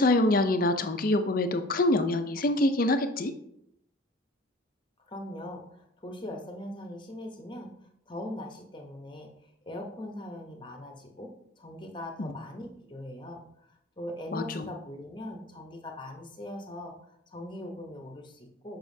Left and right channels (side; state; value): both; normal; correlation 0.45